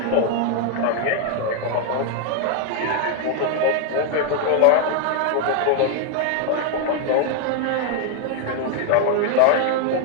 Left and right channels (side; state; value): both; different; correlation 0.00